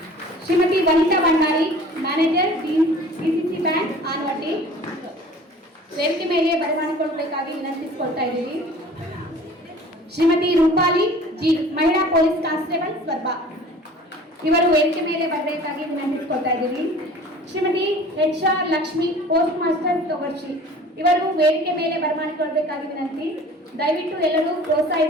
Shrimati Vanitha Bhandari manager DCC bank Anavatti ವೇದಿಕೆ ಮೇಲೆ ಬರಮಾಡಿಕೊಳ್ಳಬೇಕಾಗಿ ವಿನಂತಿಸಿಕೊಳ್ತಾ ಇದ್ದೀವಿ. ಶ್ರೀಮತಿ ರೂಪಾಲಿ G ಮಹಿಳಾ ಪೊಲೀಸ್ ಕಾನ್ಸ್ಟೇಬಲ್ ಸ್ವರ್ಬ ಇವರು ವೇದಿಕೆ ಮೇಲೆ ಬರಬೇಕಾಗಿ ವಿನಂತಿಸಿಕೊಳ್ತಾ ಇದ್ದೀವಿ. Shrimati HR Lakshmi post master Togarshi ಇವರು ವೇದಿಕೆ ಮೇಲೆ ಬರಮಾಡಿಕೊಳ್ಳಬೇಕಾಗಿ ವಿನಂತಿ. ದಯವಿಟ್ಟು ಎಲ್ಲರೂ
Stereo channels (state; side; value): normal; both; correlation 0.46